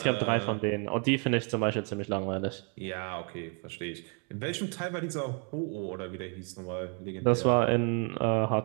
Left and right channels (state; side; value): quieter; left; 39.5 dB